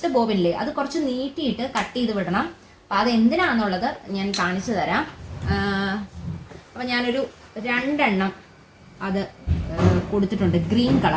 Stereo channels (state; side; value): identical; both; correlation 1.00